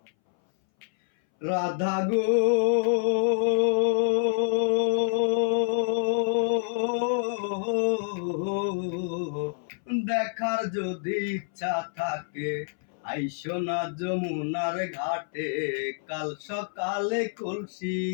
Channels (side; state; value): right; silent; 60 dB below the other